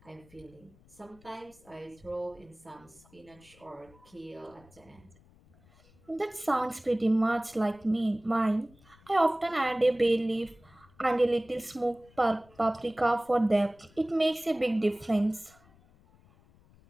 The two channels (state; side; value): noise; left; rumble, 28 dB below the sound